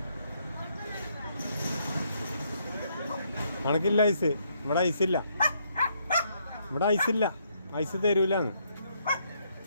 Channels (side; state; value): both; inverted; correlation -0.73